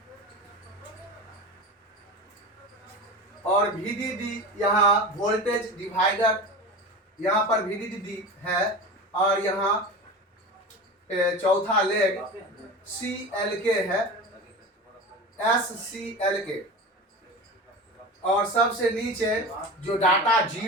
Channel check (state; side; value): normal; both; correlation 0.30